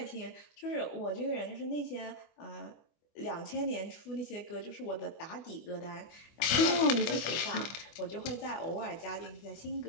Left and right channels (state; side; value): late; right; 25 ms